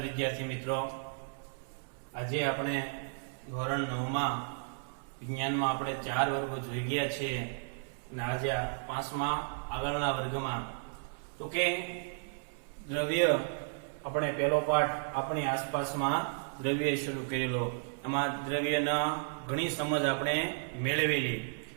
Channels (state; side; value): silent; left; 55 dB below the other